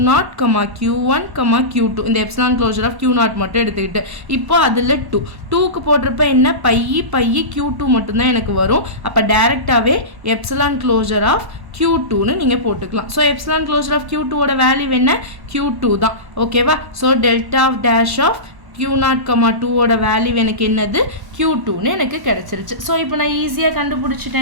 Q1, Q2 இந்த எப்சிலான் க்ளோஷர் ஆஃப் Q0 மட்டும் எடுத்துக்கிட்டு இப்போ அதில் 2க்கு போட்டிருப்ப என்ன பை Q2 மட்டும்தான் எனக்கு வரும். அப்போ டைரெக்டாகவே எப்சிலான் க்ளோஷர் ஆஃப் Q2ன்னு நீங்கள் போட்டுக்கலாம். ஸோ எப்சிலான் க்ளோஷர் ஆஃப் Q2ஓட வேல்யூ என்ன, Q2 தான். ஓகேவா? So delta of dash of Q0, 2ஓட வேல்யூ எனக்கு என்னது, Q2ன்னு எனக்கு கிடச்சிருச்சு. ஸோ இப்போ நான் ஈஸியாக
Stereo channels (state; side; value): late; left; 1.1 ms